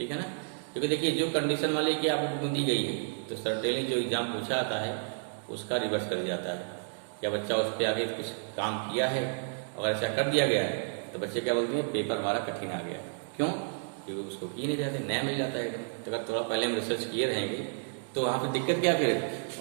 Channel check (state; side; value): silent; left; digital silence